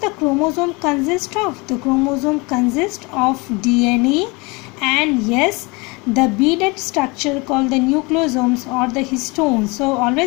chromosome consist of? The chromosome consists of DNA and yes, the beaded structure called the nucleosomes or the histones. So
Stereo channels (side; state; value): right; quieter; 26.7 dB